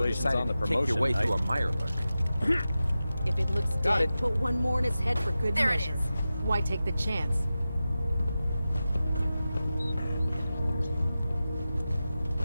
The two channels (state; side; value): inverted; both; correlation -0.94